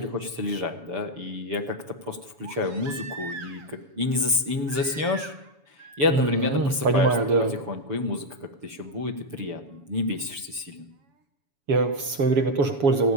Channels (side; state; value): left; late; 7.1 ms